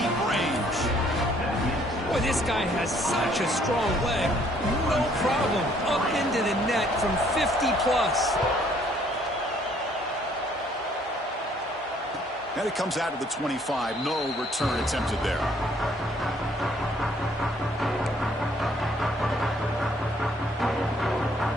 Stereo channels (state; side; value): normal; both; correlation 0.63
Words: range. Boy, this guy has such a strong leg. No problem. Up into the net from 50+. And it comes out of the 25. No return attempted there.